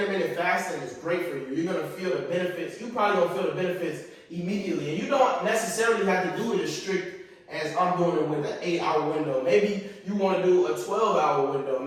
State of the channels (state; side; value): identical; both; correlation 1.00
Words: fasting is great for you. You're gonna feel the benefits. You probably gonna feel the benefits immediately. And you don't necessarily have to do it as strict as I'm doing it with an 8-hour window.Maybe you want to do a 12-hour window.